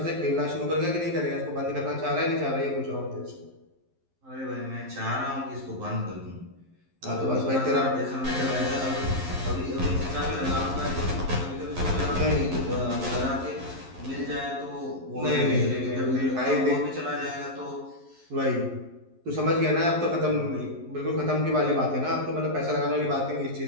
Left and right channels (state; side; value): late; left; 11 ms